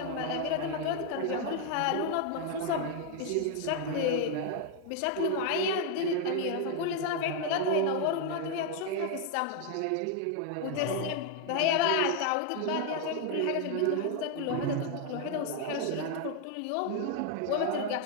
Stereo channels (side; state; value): both; different; correlation 0.00